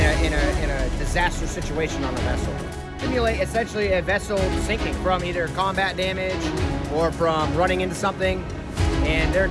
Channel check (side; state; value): both; identical; correlation 1.00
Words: a disaster situation on a vessel. Simulate essentially a vessel sinking from either combat damage or from running into something. And their